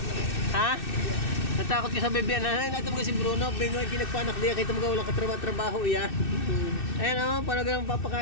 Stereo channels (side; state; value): right; late; 2.6 ms